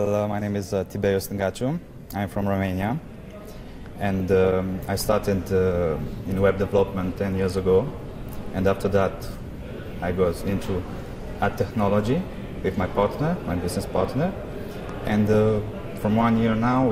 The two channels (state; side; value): identical; both; correlation 1.00